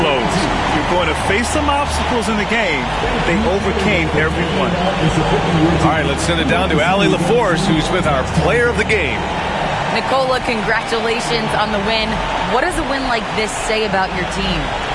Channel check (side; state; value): both; identical; correlation 1.00